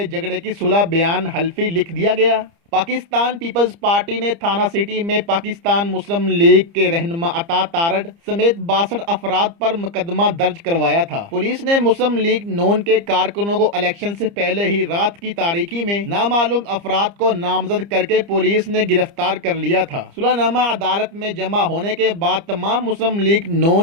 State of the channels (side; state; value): left; late; 30 ms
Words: جھگڑے کی صلح بیان حلفی لکھ دیا گیا۔ پاکستان پیپلز پارٹی نے تھانہ سٹی میں پاکستان مسلم لیگ کے رہنما عطا تارڑ سمیت 62 افراد پر مقدمہ درج کروایا تھا۔ پولیس نے مسلم لیگ نون کے کارکنوں کو الیکشن سے پہلے ہی رات کی تاریکی میں نامعلوم افراد کو نامزد کر کے پولیس نے گرفتار کر لیا تھا۔ صلح نامہ عدالت میں جمع ہونے کے بعد تمام مسلم لیگ